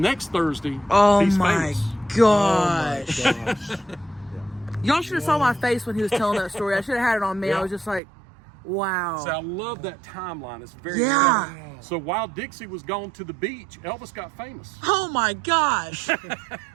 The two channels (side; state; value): left; drops out; at 8.0 s